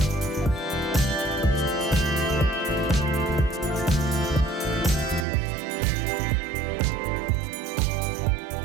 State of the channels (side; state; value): left; drops out; at 5.2 s